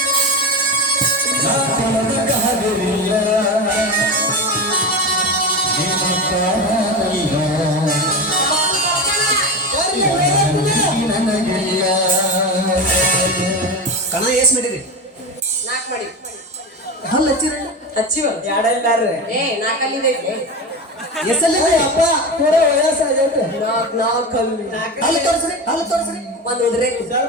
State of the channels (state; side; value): normal; both; correlation 0.22